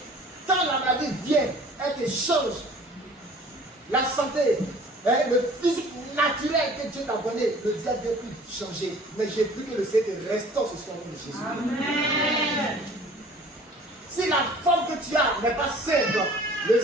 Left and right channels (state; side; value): normal; both; correlation 0.49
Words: Quand la maladie vient, elle te change. La santé, le physique naturel que Dieu t'a donné, le diable ne vient plus changer. Mais j'ai pris que le Seigneur restaure ce soir au nom de Jésus. Amen. Si la forme que tu as n'est pas simple, le